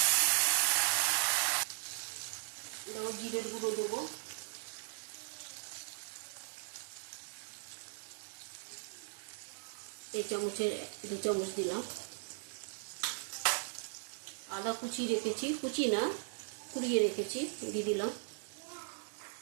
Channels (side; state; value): left; silent; digital silence